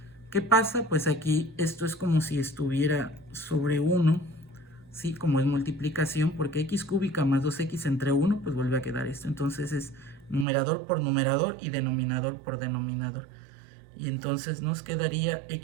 ¿Qué pasa? Pues aquí esto es como si estuviera sobre 1, ¿sí? Como es multiplicación, porque x cúbica más 2x entre 1, pues vuelve a quedar esto. Entonces es numerador por numerador y denominador por denominador. Y entonces nos quedaría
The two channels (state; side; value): drops out; left; at 10.5 s